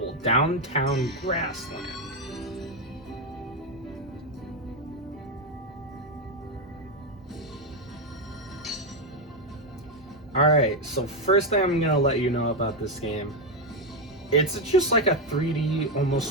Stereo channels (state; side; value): normal; both; correlation 0.07